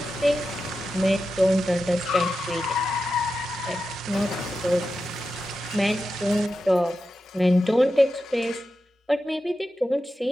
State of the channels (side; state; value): both; normal; correlation 0.91